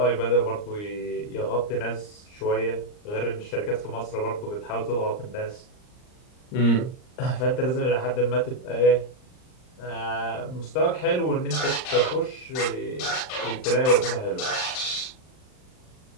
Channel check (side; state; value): right; late; 39 ms